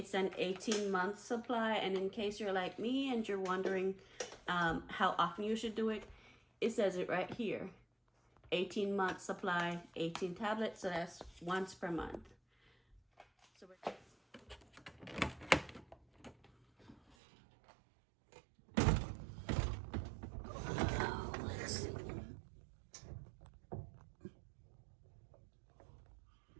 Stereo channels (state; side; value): drops out; left; at 17.2 s